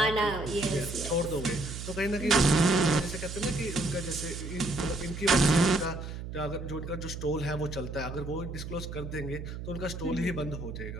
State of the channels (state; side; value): noise; right; hum, 8 dB below the sound